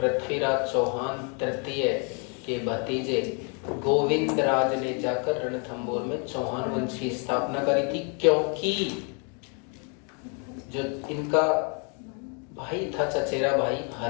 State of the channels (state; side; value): quieter; right; 37.7 dB